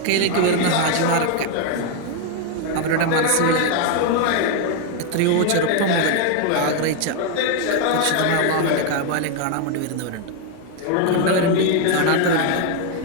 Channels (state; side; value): different; both; correlation 0.01